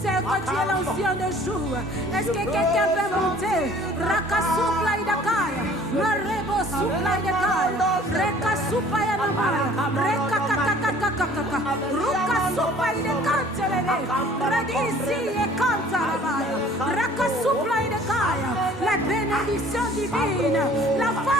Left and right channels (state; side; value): normal; both; correlation 0.52